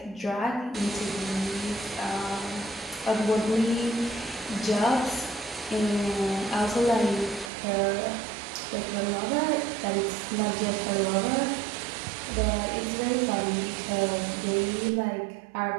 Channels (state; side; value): drops out; left; at 7.5 s